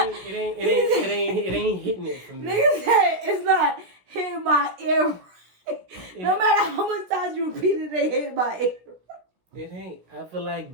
ain't hitting it for me. Nigga said it's not hitting my ear. No matter how much times you repeat it, they hit my ear. It ain't. I feel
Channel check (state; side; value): late; left; 16 ms